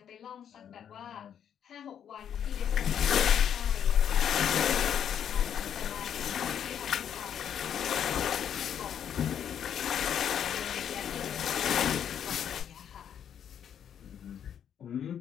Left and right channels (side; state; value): right; quieter; 9.0 dB